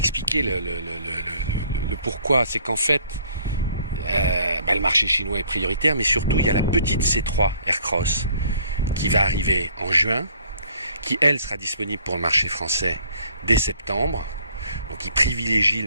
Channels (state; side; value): inverted; both; correlation -0.59